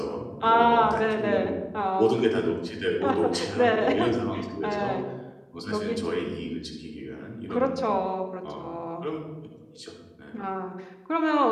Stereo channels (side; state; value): both; identical; correlation 1.00